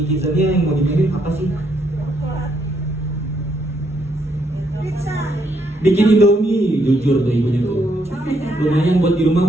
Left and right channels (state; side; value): normal; both; correlation 0.74